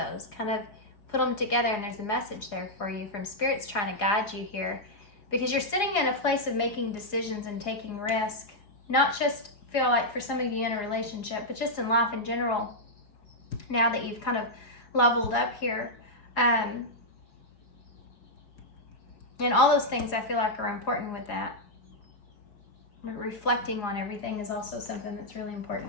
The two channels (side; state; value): right; late; 4.8 ms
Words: kind of put them together, and there's a message there for you from Spirit's trying to guide you here, because you're sitting in a place of making decisions and taking risk, not just feel like for some of you in a relationship, but just in life in general, now that you've kind of leveled up here. And all those things I feel like are important with that. Reflecting on everything is also something that's really